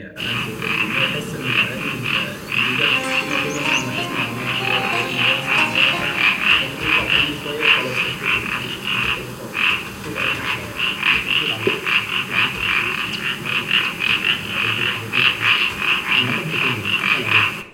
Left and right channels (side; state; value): both; identical; correlation 1.00